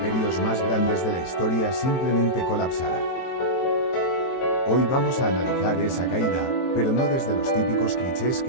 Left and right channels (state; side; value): late; right; 23 ms